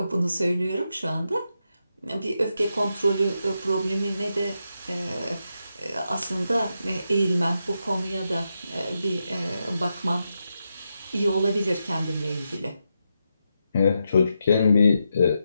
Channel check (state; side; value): inverted; both; correlation -0.85